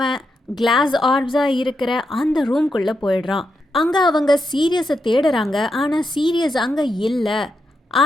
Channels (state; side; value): normal; both; correlation 0.84